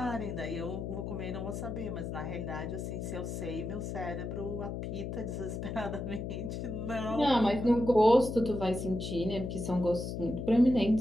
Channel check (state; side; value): noise; left; hum, 5 dB below the sound